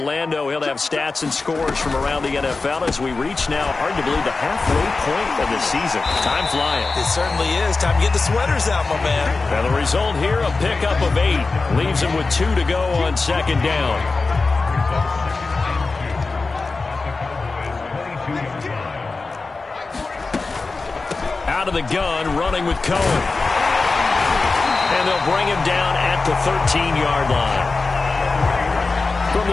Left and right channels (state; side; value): quieter; right; 3.9 dB